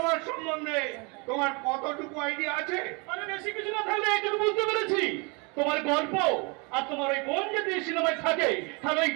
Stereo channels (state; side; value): quieter; left; 30.6 dB